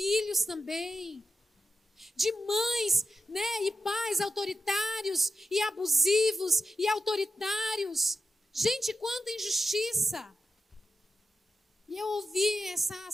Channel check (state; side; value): normal; both; correlation 0.90